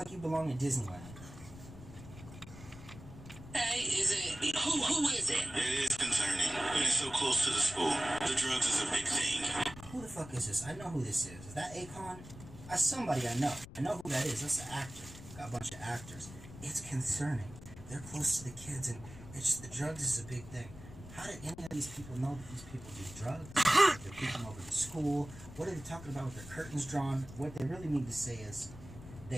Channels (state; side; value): noise; left; rumble, 15 dB below the sound